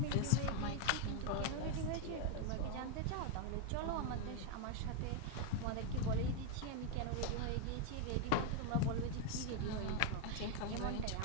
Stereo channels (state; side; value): different; both; correlation 0.01